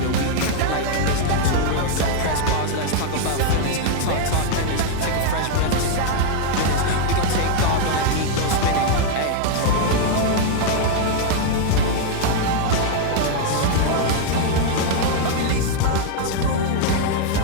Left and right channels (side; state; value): both; different; correlation 0.00